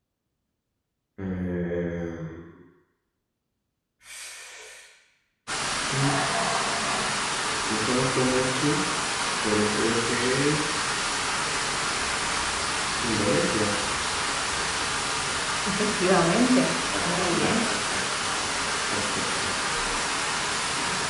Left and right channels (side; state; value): both; identical; correlation 1.00